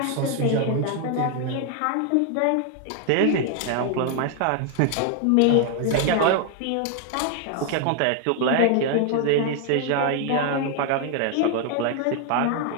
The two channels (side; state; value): both; different; correlation 0.00